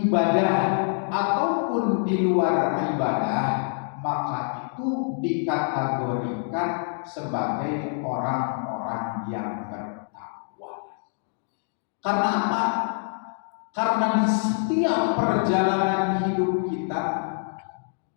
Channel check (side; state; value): right; silent; 61 dB below the other